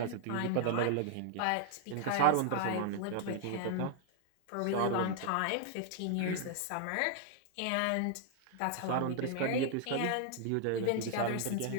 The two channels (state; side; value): different; both; correlation 0.00